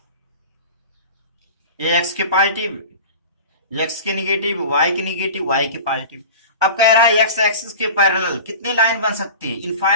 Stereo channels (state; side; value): inverted; both; correlation -0.36